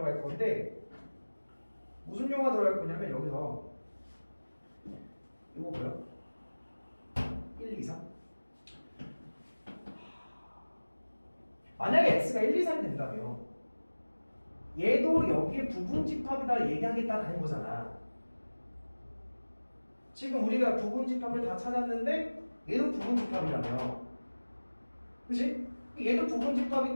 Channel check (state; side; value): inverted; both; correlation -1.00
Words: 건데, 무슨 용어가 들어갈 거냐면 여기서 이거 뭐야? 1, 2, 3. 만약에 X가 1, 2, 3이 된다면 얘도 여기에 부분 집합이다 얘기하겠다는 거잖아. 지금 우리가 부분 집합을 다 찾았는데 얘도 부분 집합이라며. 그치? 얘도 부분